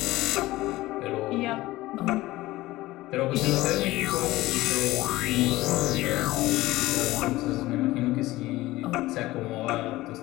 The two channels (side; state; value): right; quieter; 18.0 dB